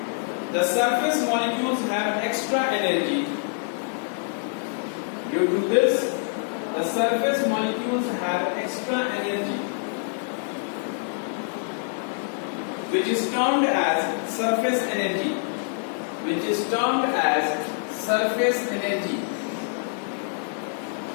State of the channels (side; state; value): right; silent; 61 dB below the other